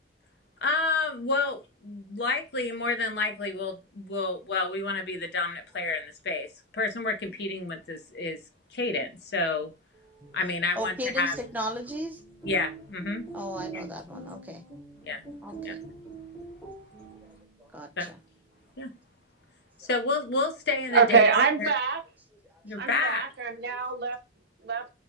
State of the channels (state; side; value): normal; both; correlation -0.08